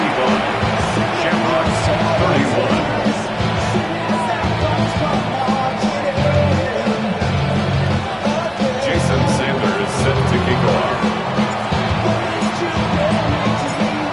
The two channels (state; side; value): identical; both; correlation 1.00